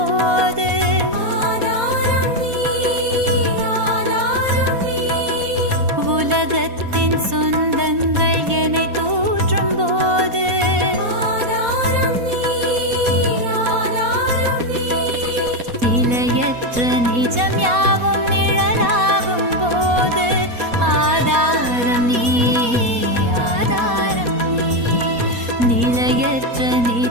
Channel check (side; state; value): left; late; 4.2 ms